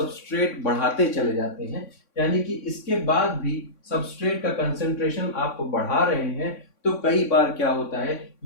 बढ़ाते चले जाते हैं, यानी कि इसके बाद भी सबस्ट्रेट का कंसेंट्रेशन आप बढ़ा रहे हैं, तो कई बार क्या होता है,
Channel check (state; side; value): late; right; 3.6 ms